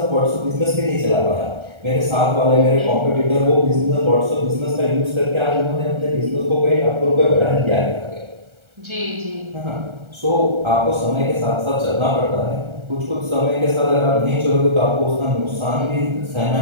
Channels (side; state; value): left; late; 1.3 ms